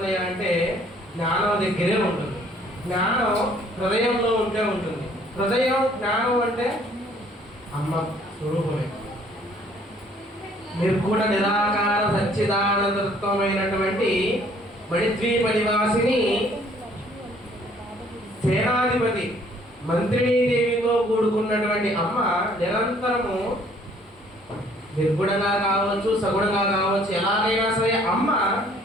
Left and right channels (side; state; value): both; normal; correlation 0.60